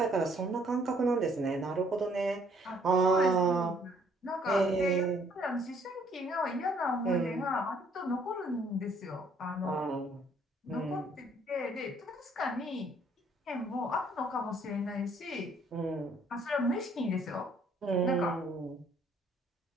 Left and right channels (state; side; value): normal; both; correlation 0.64